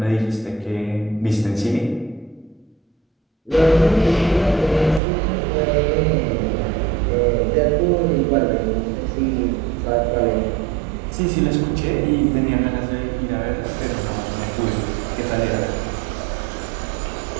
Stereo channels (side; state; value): left; drops out; at 5.0 s